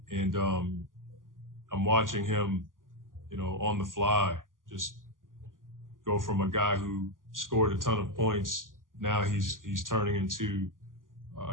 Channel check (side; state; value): left; late; 0.89 ms